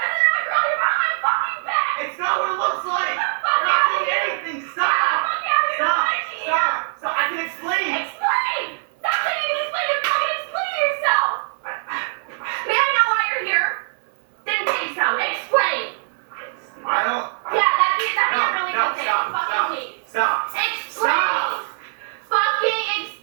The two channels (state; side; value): silent; left; 59 dB below the other